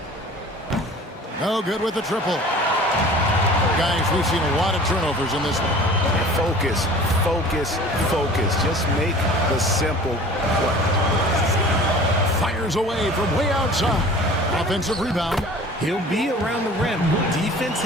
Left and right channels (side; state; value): both; normal; correlation 0.44